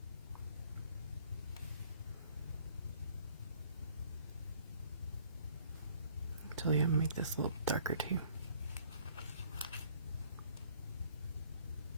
Actually, I'm going to make this a little darker too.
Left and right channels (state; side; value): inverted; both; correlation -0.57